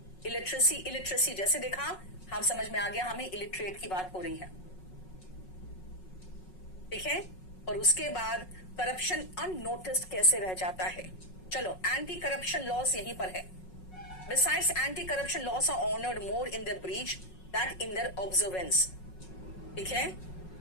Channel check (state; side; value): late; right; 5.4 ms